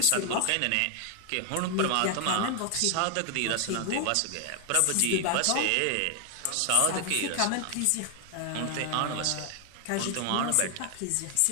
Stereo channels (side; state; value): both; different; correlation 0.00